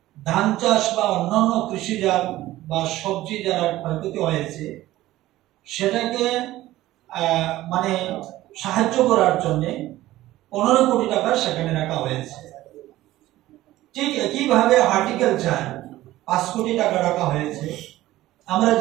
ধান চাষ বা অন্যান্য কৃষিজাত বা সবজি যারা ক্ষয়ক্ষতি হয়েছে সেটাকে মানে সাহায্য করার জন্য 15 কোটি টাকা সেখানে রাখা হয়েছে। ঠিক একইভাবে হর্টিকালচার 5 কোটি টাকা রাখা হয়েছে। আমরা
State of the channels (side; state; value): left; quieter; 15.9 dB